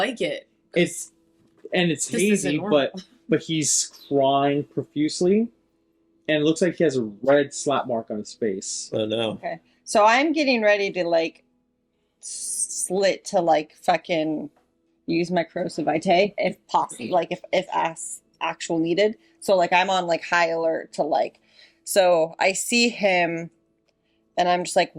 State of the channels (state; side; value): identical; both; correlation 1.00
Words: it. It's This isn't hazy, normal. but he's crying profusely, and it looks like he has a red slap mark on his face. Oh, no. Okay. So I'm getting ready to like slit to like fucking use my corrosive vitae if possible, like if actual needed. So like I'm on like high alert to like. So I see him, and I'm just like,